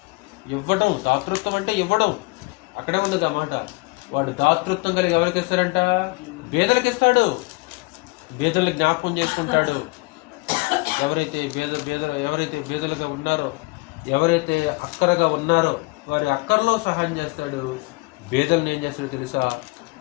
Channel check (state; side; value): quieter; right; 26.6 dB